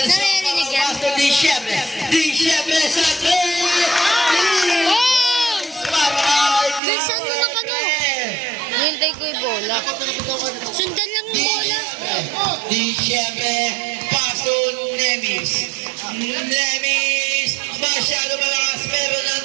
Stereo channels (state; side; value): drops out; left; at 6.8 s